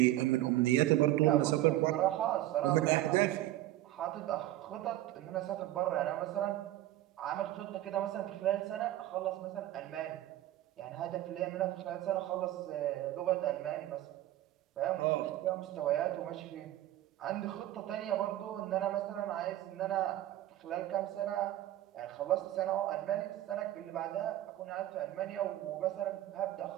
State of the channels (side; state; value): left; quieter; 14.5 dB